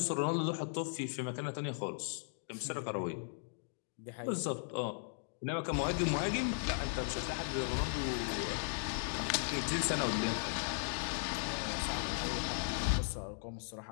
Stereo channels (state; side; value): silent; right; digital silence